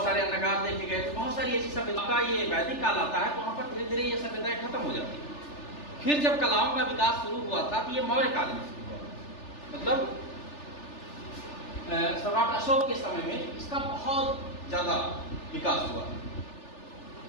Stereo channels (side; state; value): right; late; 3.4 ms